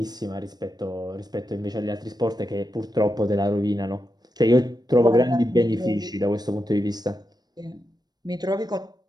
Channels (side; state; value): left; late; 0.19 ms